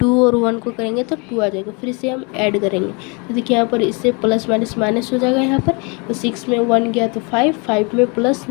और 1 को करेंगे तो 2 आ जाएगा, फिर इसे हम ऐड करेंगे तो देखिए यहाँ पर इससे प्लस माइनस माइनस हो जाएगा यहाँ पर, तो 6 में 1 गया तो 5, 5 में प्लस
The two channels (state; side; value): quieter; right; 31.4 dB